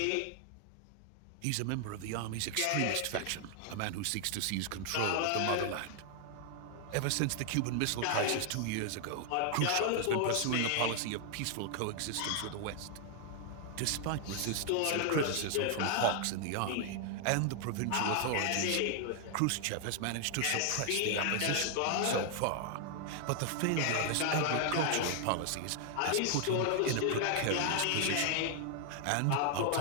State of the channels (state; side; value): different; both; correlation 0.00